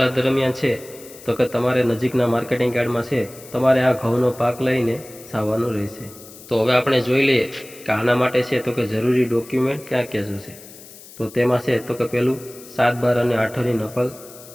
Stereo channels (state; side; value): noise; left; hiss, 19 dB below the sound